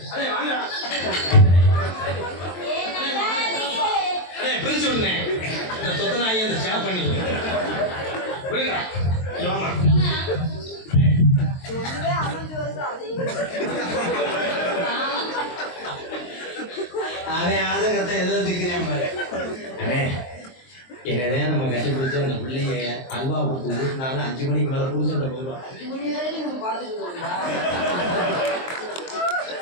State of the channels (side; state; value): right; late; 23 ms